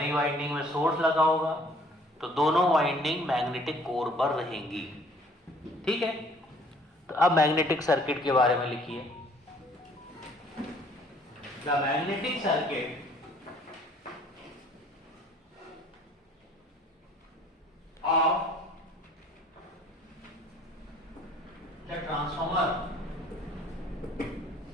वाइंडिंग में सोर्स लगा होगा. तो दोनों वाइंडिंग मैग्नेटिक कोर पर रहेंगी. ठीक है? तो अब मैग्नेटिक सर्किट के बारे में लिखिए. The magnetic circuit of the transformer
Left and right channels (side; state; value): both; normal; correlation 0.57